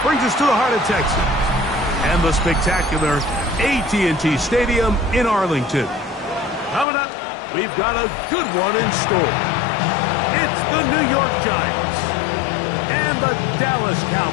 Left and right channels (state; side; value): drops out; right; at 6.9 s